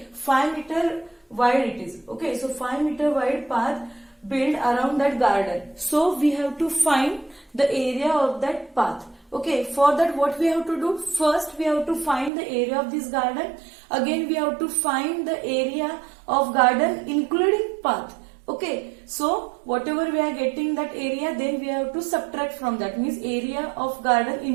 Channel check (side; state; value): left; drops out; at 12.3 s